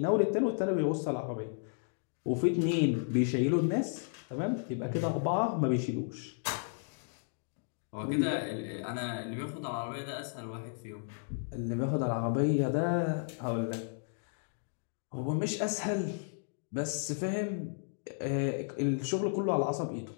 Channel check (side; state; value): right; silent; digital silence